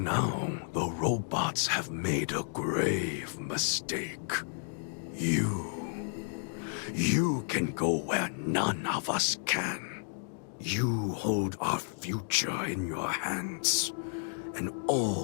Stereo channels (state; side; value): silent; right; digital silence